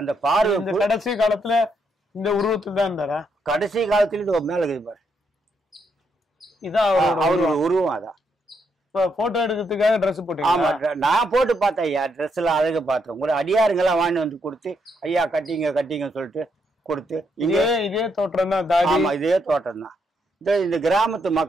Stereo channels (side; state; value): both; normal; correlation 0.77